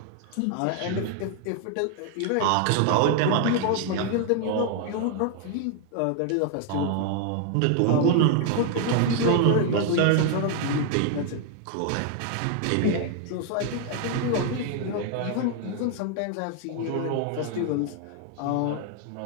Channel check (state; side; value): different; both; correlation 0.00